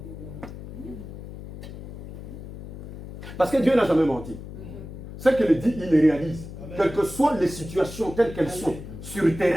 Parce que Dieu n'a jamais menti. Ce qu'il dit, il le réalise. Quelles que soient les situations telles qu'elles sont sur le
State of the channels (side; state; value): left; noise; hum, 12 dB below the sound